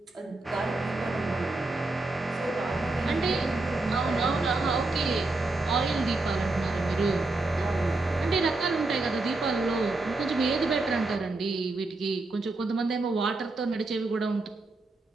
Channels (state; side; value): quieter; left; 3.2 dB